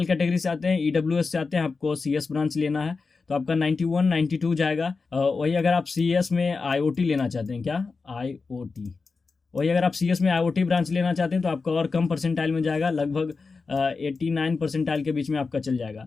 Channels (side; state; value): right; quieter; 4.4 dB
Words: कैटेगरी से आते हैं, ईडब्ल्यूएस से आते हैं, आपको सीएस ब्रांच लेना है तो आपका 91 92 जाएगा। वही अगर आप सीएस में आईओटी लेना चाहते हैं, क्या आईओटी, वही अगर आप सीएस में आईओटी ब्रांच लेना चाहते हैं तो आपका और कम परसेंटाइल में जाएगा, लगभग 89 परसेंटाइल के बीच में आपका चल